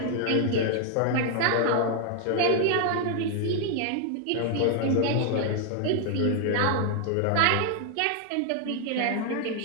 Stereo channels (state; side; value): different; both; correlation 0.00